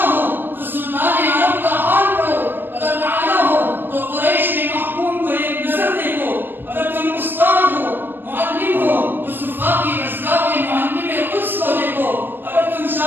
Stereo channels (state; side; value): late; left; 0.095 ms